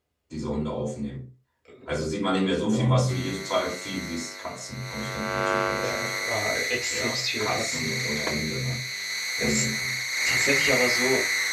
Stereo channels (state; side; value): identical; both; correlation 1.00